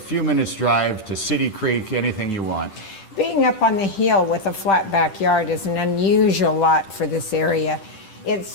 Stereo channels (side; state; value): right; late; 10 ms